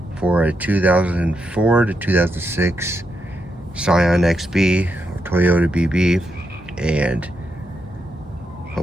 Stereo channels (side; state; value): both; normal; correlation 0.82